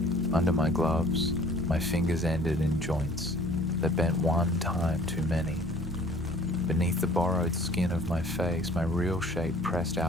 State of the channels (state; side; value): normal; both; correlation 0.53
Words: Under my gloves, my fingers ended in joints that bent one time too many. Beneath the borrowed skin of my face, my real shape pressed